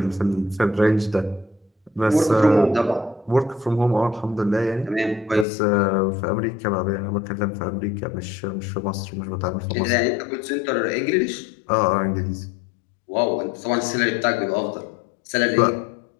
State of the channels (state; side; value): drops out; right; at 5.5 s